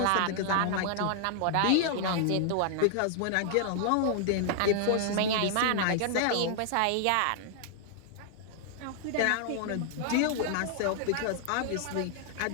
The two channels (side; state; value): both; different; correlation 0.00